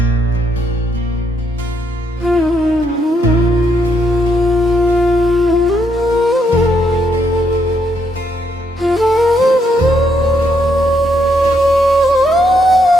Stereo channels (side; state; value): both; normal; correlation 0.75